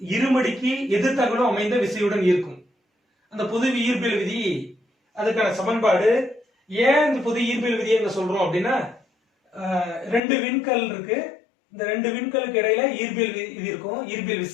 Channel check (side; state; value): right; drops out; at 10.2 s